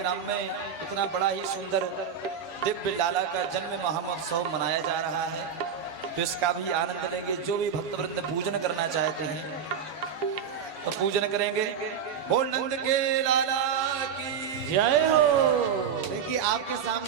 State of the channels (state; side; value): quieter; left; 7.4 dB